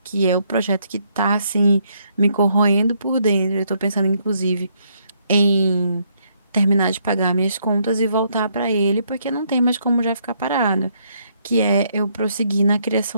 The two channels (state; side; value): inverted; both; correlation -0.72